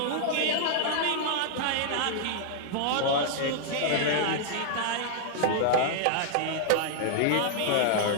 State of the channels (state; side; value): different; both; correlation -0.01